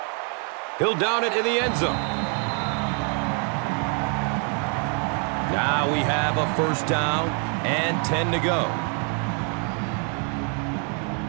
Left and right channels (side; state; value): left; quieter; 39.6 dB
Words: He'll down it in the end zone. Now we have a first down and 10 to go.